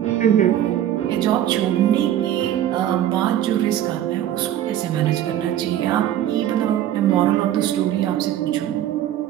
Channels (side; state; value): left; quieter; 11.7 dB